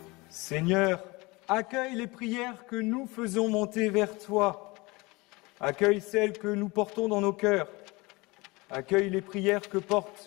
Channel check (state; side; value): quieter; right; 24.0 dB